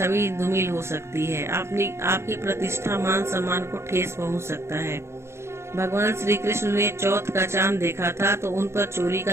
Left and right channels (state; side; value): late; left; 0.13 ms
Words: धूमिल हो सकती है, आपकी प्रतिष्ठा मान सम्मान को ठेस पहुंच सकता है। भगवान श्री कृष्ण ने चौथ का चांद देखा था तो उन पर चोरी